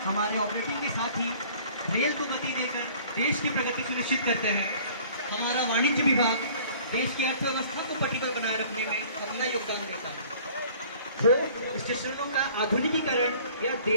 हमारे ऑपरेटिंग के साथ ही रेल को गति देकर देश की प्रगति सुनिश्चित करते हैं, हमारा वाणिज्य विभाग देश की अर्थव्यवस्था को पटरी पर बनाए रखने में अपना योगदान देता है। हो स्टेशनों का आधुनिकीकरण या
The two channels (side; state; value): both; inverted; correlation -0.51